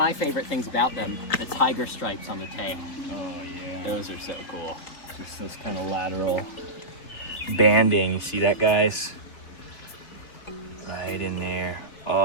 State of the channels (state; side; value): late; right; 4.0 ms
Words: favorite things about them, the tiger stripes on the tail. Oh, yeah. Those are so cool. Just this kind of lateral banding. You see that, guys? Right in there.